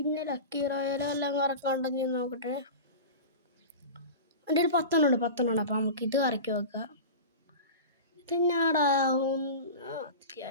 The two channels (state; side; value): inverted; both; correlation -0.30